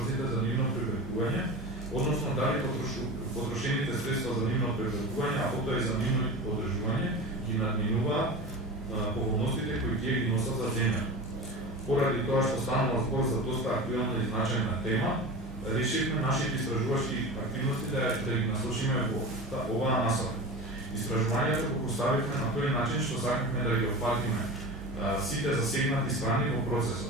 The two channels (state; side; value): normal; both; correlation 0.30